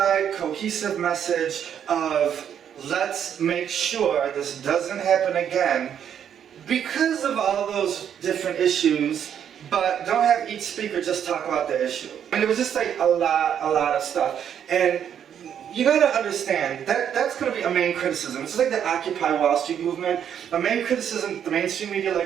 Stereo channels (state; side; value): quieter; left; 8.9 dB